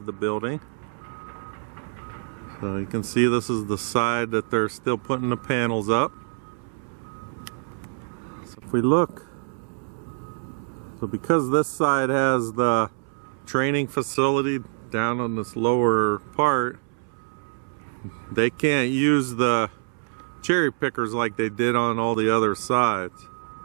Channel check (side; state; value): left; silent; 61 dB below the other